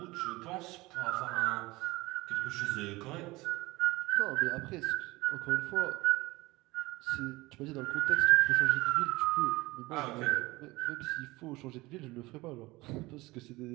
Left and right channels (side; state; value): left; quieter; 21.0 dB